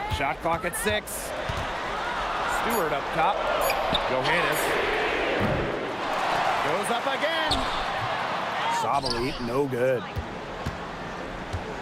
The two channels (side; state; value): both; identical; correlation 1.00